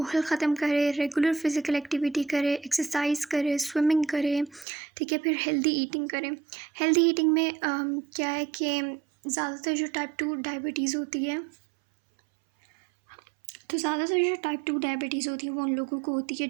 ख़त्म करे, रेगुलर फिज़िकल एक्टिविटी करे, एक्सरसाइज करे, स्विमिंग करे। ठीक है, फिर हेल्दी ईटिंग करें। हेल्दी ईटिंग में क्या है कि ज़्यादातर जो टाइप 2 डायबिटीज़ होती है, तो ज़्यादातर जो टाइप 2 डायबिटीज़ होती है वो उन लोगों को होती है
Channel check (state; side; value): drops out; left; at 4.7 s